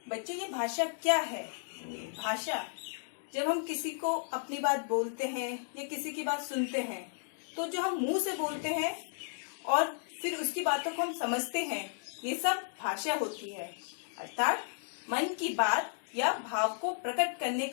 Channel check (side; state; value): right; silent; digital silence